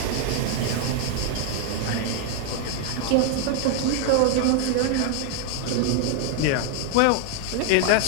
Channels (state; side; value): different; both; correlation 0.00